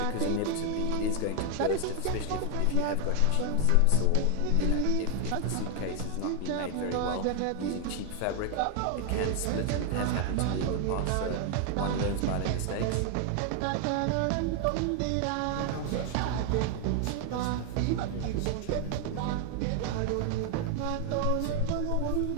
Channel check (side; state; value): both; different; correlation 0.00